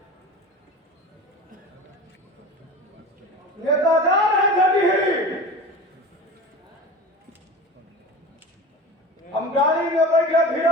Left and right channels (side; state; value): both; normal; correlation 0.33